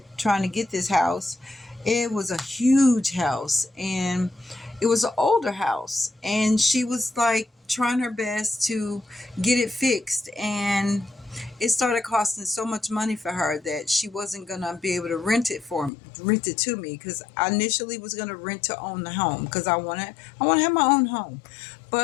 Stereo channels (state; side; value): drops out; right; at 15.9 s